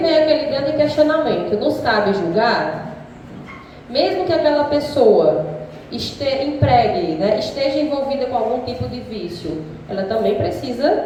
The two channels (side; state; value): both; identical; correlation 1.00